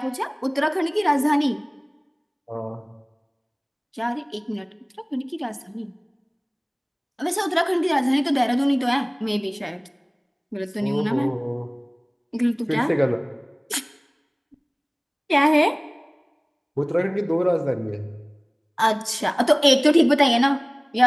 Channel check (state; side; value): identical; both; correlation 1.00